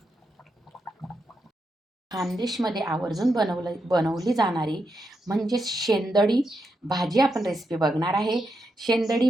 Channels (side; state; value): both; normal; correlation 0.84